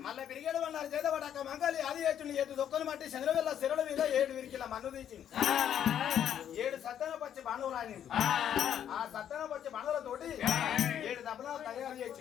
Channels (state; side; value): quieter; right; 9.7 dB